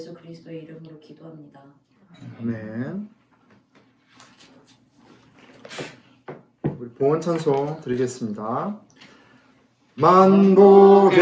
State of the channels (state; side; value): identical; both; correlation 1.00